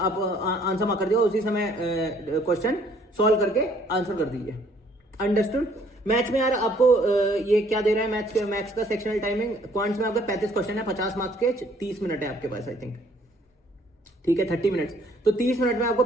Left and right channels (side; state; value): both; normal; correlation 0.61